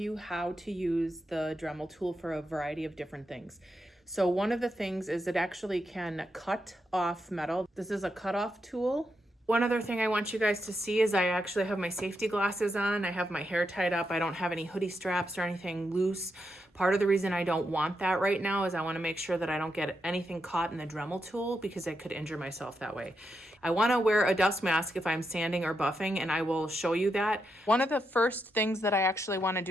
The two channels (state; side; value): normal; both; correlation 0.84